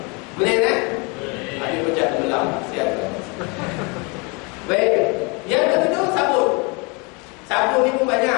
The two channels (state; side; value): quieter; right; 30.5 dB